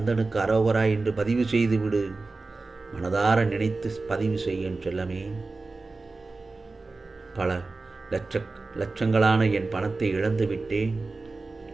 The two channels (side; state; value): left; quieter; 3.6 dB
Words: அரோகரா என்று பதிவு செய்து விடு. மனதார நினைத்து பதிவு செய்யும் செல்லமே. பல லட்சங்களான என் பணத்தை இழந்து விட்டேன்.